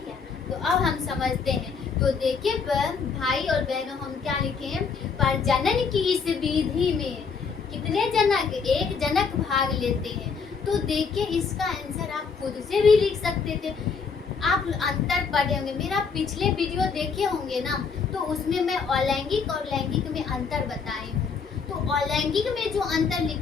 है, तो अब हम समझते हैं। तो देखिए भाई और बहनों, हम क्या लिखे? प्रजनन की इस विधि में कितने जनक? एक जनक भाग लेते हैं। तो देखिए इसका आंसर आप खुद से भी लिख सकते थे। आप अंतर पढ़े होंगे, मेरा पिछले वीडियो देखे होंगे ना, तो उसमें मैं अलैंगिक और लैंगिक में अंतर बताई हूँ। तो अलैंगिक में जो अंतर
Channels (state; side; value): quieter; right; 5.5 dB